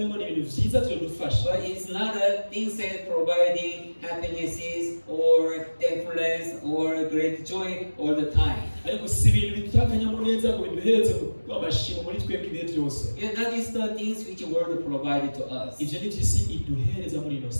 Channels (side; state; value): both; inverted; correlation -1.00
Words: ni ibintu vyiza vyodufasha, But it's not a things that providing happinesses or thankfulness or great joy all the time. ariko si ibintu bitanga akanyamuneza ngo biduhereze amashimo muri twebwe ibihe byose. Yeah, that is the things which the world provided to us. ivyo ni vy'isi iduhereza muri ino